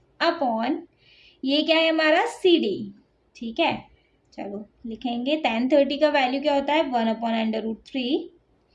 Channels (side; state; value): both; identical; correlation 1.00